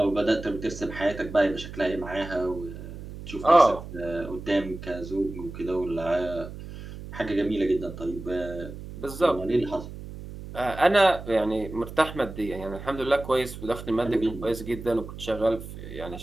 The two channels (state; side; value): noise; right; hum, 12 dB below the sound